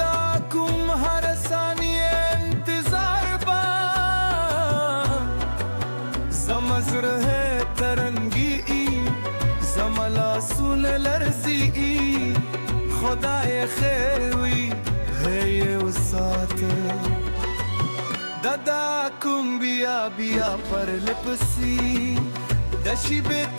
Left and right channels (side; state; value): both; inverted; correlation -1.00